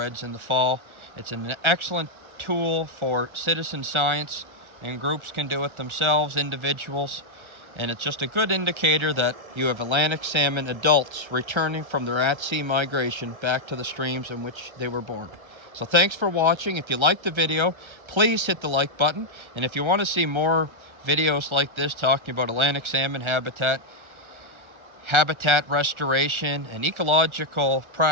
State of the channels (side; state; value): left; late; 1.3 ms